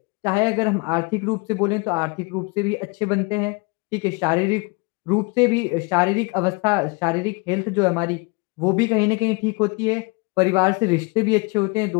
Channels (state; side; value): quieter; right; 29.3 dB